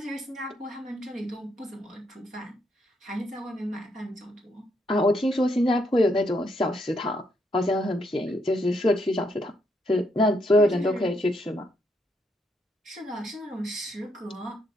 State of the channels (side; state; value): both; normal; correlation 0.76